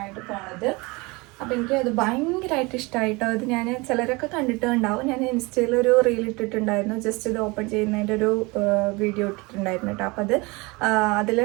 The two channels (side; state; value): left; quieter; 25.3 dB